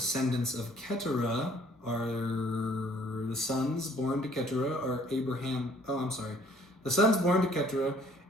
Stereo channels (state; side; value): normal; both; correlation 0.59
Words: of Keturah are the sons born to Keturah are Abraham. The sons born to Keturah,